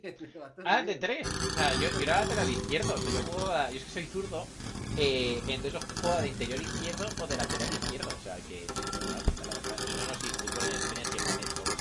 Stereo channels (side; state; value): both; identical; correlation 1.00